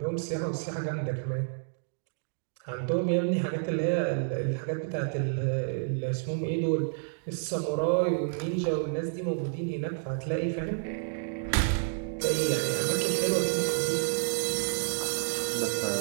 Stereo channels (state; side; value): silent; left; digital silence